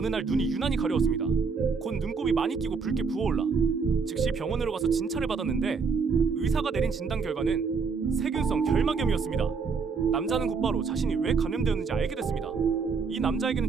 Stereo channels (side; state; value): left; quieter; 5.2 dB